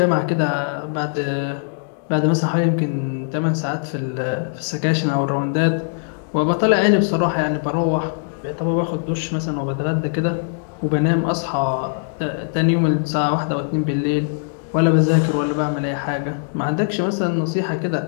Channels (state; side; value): silent; right; digital silence